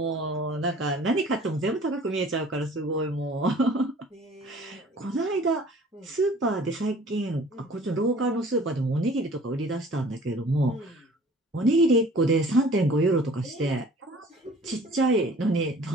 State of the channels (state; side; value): normal; both; correlation 0.49